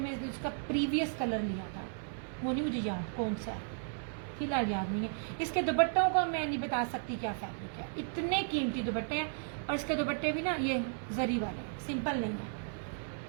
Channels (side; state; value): left; silent; 55 dB below the other